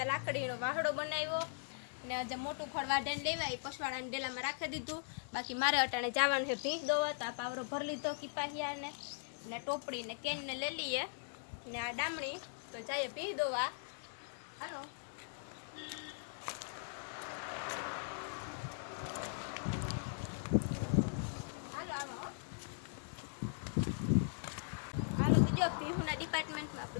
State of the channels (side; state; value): right; silent; digital silence